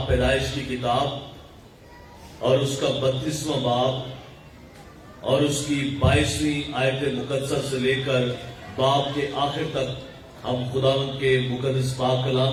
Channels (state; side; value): identical; both; correlation 1.00